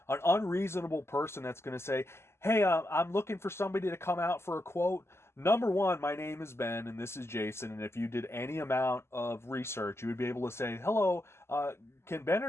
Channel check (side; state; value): right; late; 0.12 ms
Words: An unreasonable person that's going to say, hey, I'm looking for somebody to come out for a quote. Number one, my name is Ben and this is Jason. And if you did any amount of research, you would be able to say, hello, can Ben